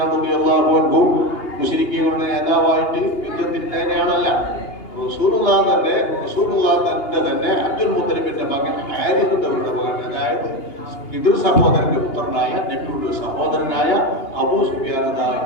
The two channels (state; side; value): late; right; 2.8 ms